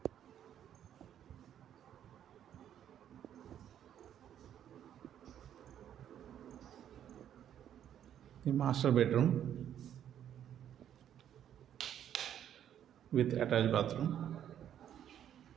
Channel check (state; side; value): quieter; left; 10.1 dB